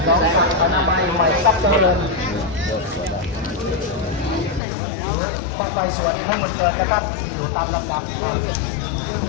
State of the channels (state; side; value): drops out; right; at 4.6 s